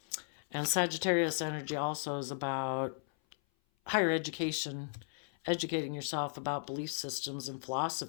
And Sagittarius energy also is about higher education, educating yourself about belief systems and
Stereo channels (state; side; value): silent; right; 54 dB below the other